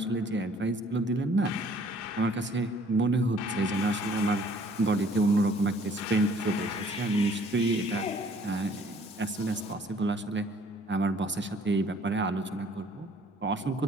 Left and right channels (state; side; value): normal; both; correlation 0.57